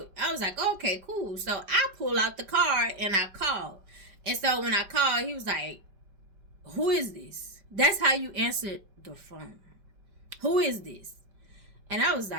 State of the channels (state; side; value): late; left; 5.1 ms